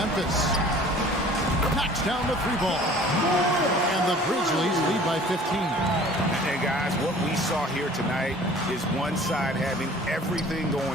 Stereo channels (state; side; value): normal; both; correlation 0.48